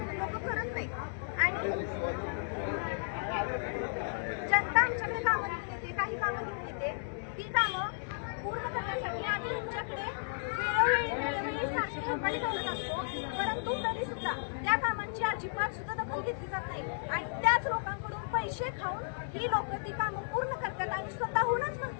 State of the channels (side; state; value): right; silent; digital silence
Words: लोक करत नाही. आणि जनता आमच्याकडे कामं घेऊन येते, काही कामं घेऊन येते. ती कामं पूर्ण करण्यासाठी आम्ही तुमच्याकडे वेळोवेळी सारखी कंपनी बोलत असतो. परंतु तरी सुद्धा त्या कामांची अजिबात सुद्धा दखल घेतली जात नाही. आणि त्याच लोकांकडून पैसे खाऊन ही लोक ती कामं पूर्ण करतात आणि स्वतःहूनच